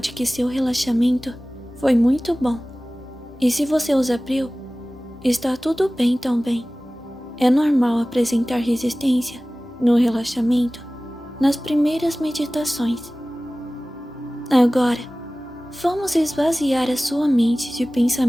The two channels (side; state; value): both; normal; correlation 0.97